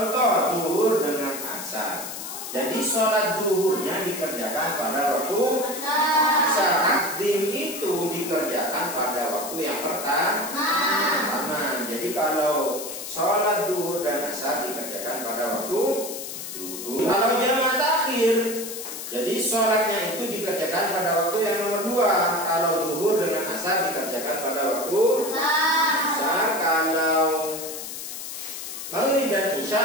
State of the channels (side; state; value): left; noise; hiss, 8 dB below the sound